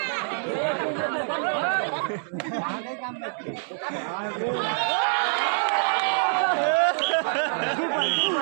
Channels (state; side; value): silent; left; digital silence